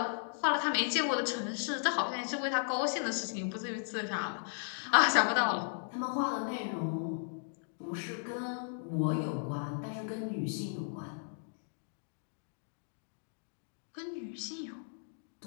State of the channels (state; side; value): silent; right; digital silence